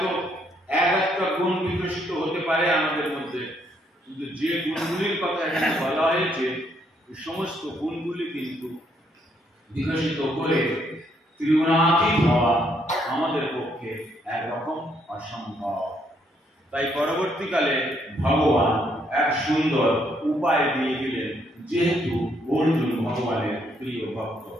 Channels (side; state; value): both; normal; correlation 0.72